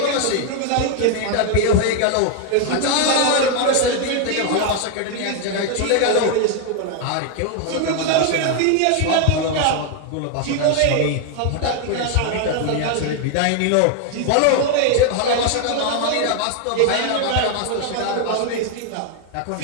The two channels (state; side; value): different; both; correlation 0.00